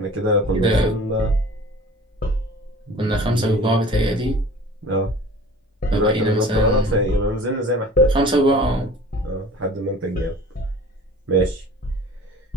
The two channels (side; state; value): both; normal; correlation 0.44